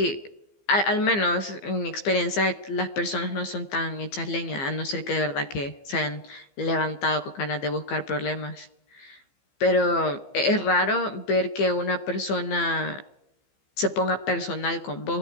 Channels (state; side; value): late; right; 15 ms